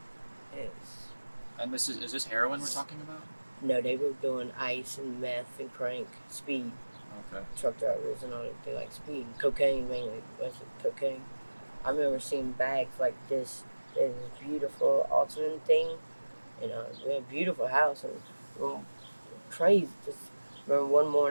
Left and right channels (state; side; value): inverted; both; correlation -1.00